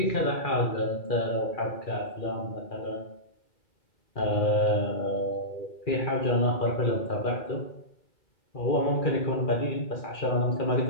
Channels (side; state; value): right; late; 2.4 ms